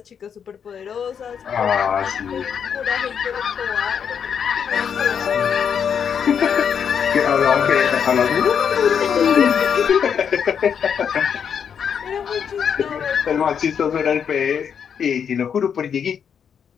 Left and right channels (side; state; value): right; quieter; 7.5 dB